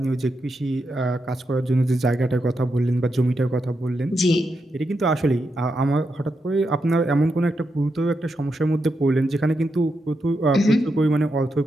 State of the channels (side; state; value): both; normal; correlation 0.85